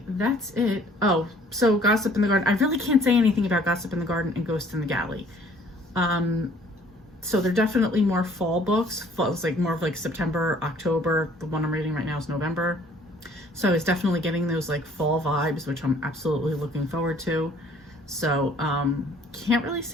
that's it. Oh, so Gossip in the Garden. I really can't say anything about Gossip in the Garden and Ghost in the Galley. So they're definitely more fall books. It's like more of like September, October. The one I'm reading right now is November. So it's definitely getting those like fall vibes, which I'm absolutely looking forward to. So can't really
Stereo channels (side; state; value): both; normal; correlation 0.57